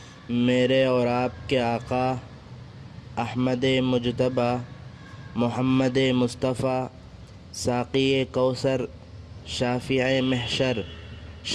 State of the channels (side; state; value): both; identical; correlation 1.00